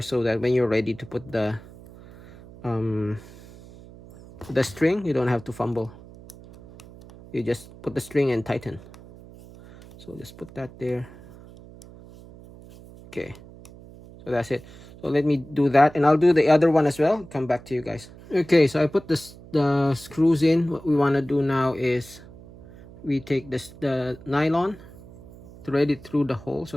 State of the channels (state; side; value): noise; right; hum, 19 dB below the sound